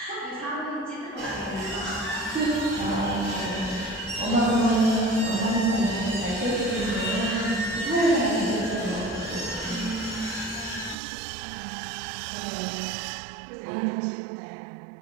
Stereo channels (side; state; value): left; drops out; at 11.0 s